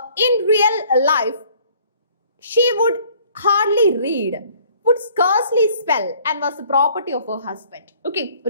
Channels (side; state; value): both; inverted; correlation -0.57